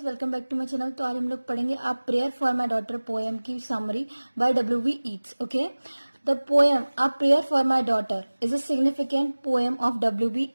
welcome back to my channel. तो आज हम लोग पढ़ेंगे a prayer for my daughter poem की summary by W.V. Yeats. Okay, the poem a prayer for my daughter is a significant poem of W.V.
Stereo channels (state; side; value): inverted; both; correlation -1.00